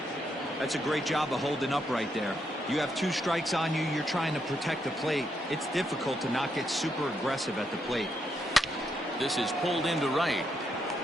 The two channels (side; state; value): both; normal; correlation 0.79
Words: That's a great job of holding up right there. You have 2 strikes on you. You're trying to protect the plate. It's difficult to not get super aggressive at the plate. This is pulled into right.